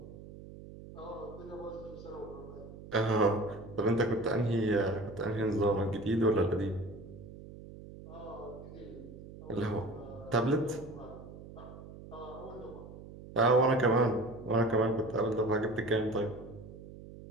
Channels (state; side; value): noise; right; hum, 15 dB below the sound